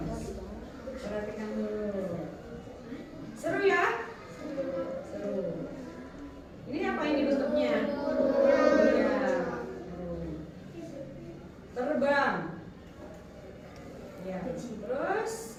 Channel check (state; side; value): identical; both; correlation 1.00